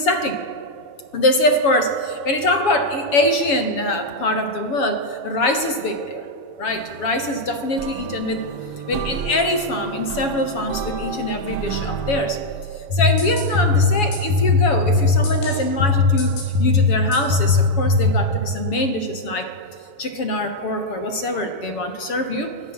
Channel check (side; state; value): right; late; 7.1 ms